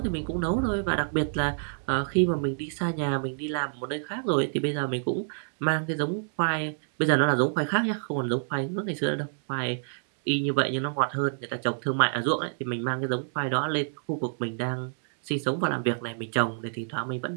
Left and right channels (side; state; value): left; silent; digital silence